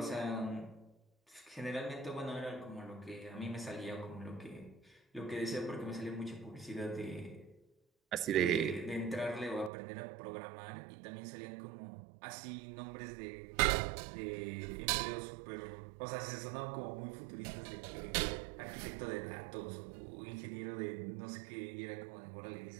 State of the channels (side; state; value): left; drops out; at 9.7 s